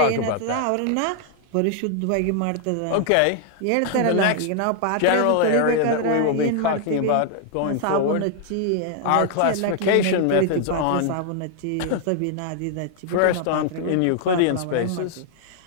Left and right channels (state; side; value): different; both; correlation 0.00